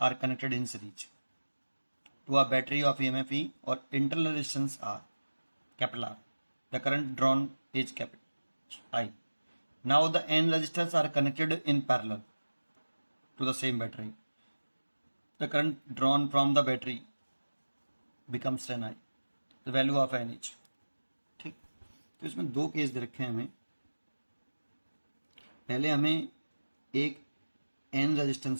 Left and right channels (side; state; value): both; inverted; correlation -1.00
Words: are connected in series to a battery of EMF E और internal resistance R capital R. The current drawn is capital I. Now the n resistors are connected in parallel to the same battery. The current drawn from the battery becomes 10 I. The value of n each. ठीक, तो इसमें दो case दे रखे हैं हमें। पहले हमें एक एन